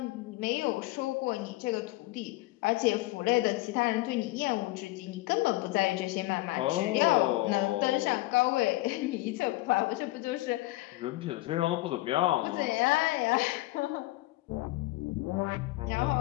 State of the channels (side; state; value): right; quieter; 19.3 dB